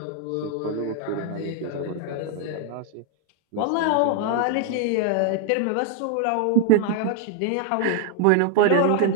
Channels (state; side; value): different; both; correlation 0.00